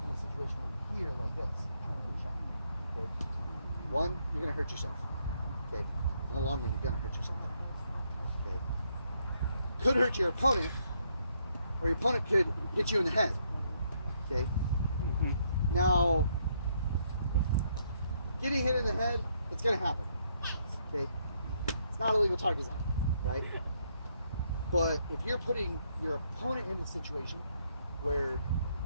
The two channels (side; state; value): both; inverted; correlation -0.73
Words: in a situation where you're here like this, trying to get a shot. Okay? One, you're gonna hurt yourself. Okay? In the long run, you're gonna hurt yourself. Okay? Could hurt your opponent, or your opponent could hit you in the head. Okay? Mhm. Now, getting hit in the head, it's gonna happen. Okay? It's not a legal target zone, right? But if you're putting your opponent in a situation where